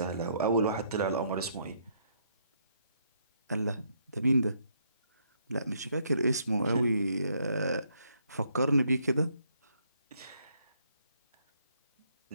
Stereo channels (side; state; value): both; inverted; correlation -0.72